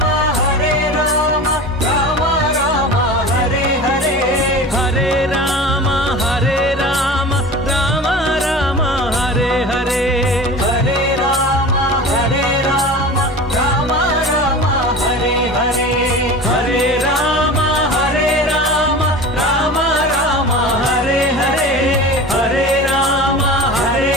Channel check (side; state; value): both; normal; correlation 0.34